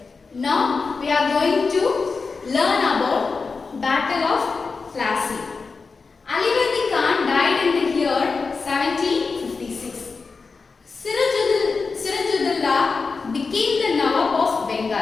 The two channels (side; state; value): right; quieter; 4.5 dB